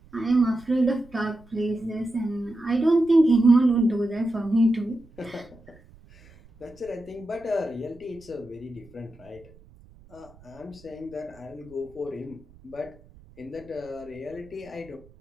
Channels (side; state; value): right; noise; rumble, 25 dB below the sound